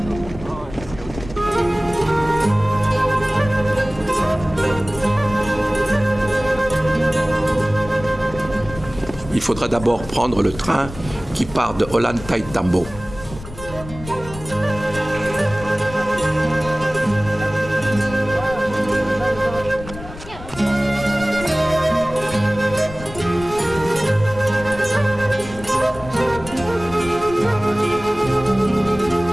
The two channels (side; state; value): left; noise; rumble, 14 dB below the sound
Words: Il faudra d'abord prendre le train qui part de Ollantaytambo.